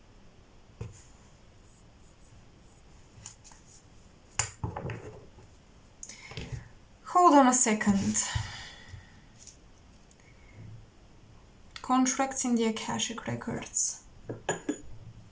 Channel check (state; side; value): identical; both; correlation 1.00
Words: Hold on a second. Contracts in the AKASHIC records.